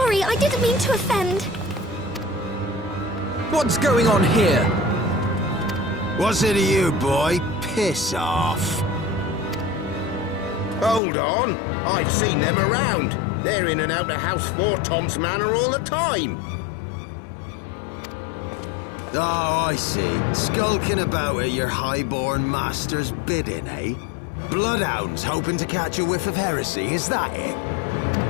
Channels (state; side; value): drops out; right; at 11.0 s